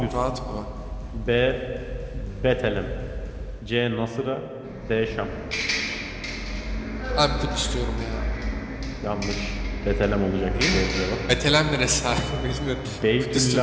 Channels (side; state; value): both; identical; correlation 1.00